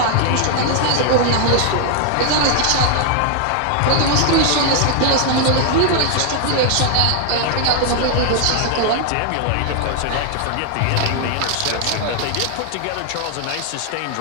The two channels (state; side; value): different; both; correlation 0.00